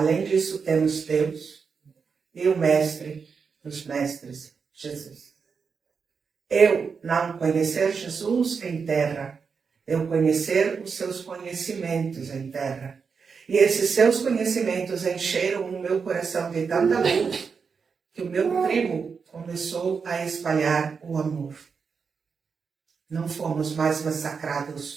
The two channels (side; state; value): left; quieter; 5.6 dB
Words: disso temos Deus e o Mestre dos Mestres, Jesus. Eu não conhecer Jesus em terra, eu conhecer os seus conhecimentos em terra. E esses seus conhecimentos encheram o meu coração de tanta luz que o meu tribo começou a espalhar o amor. Não fomos mais